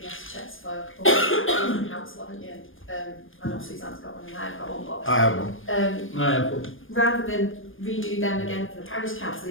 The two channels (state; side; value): late; right; 0.59 ms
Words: checks for the council, haven't you? I know Suzanne's got one and I've got one, but I have one. I have one. rather than redo them again for the parish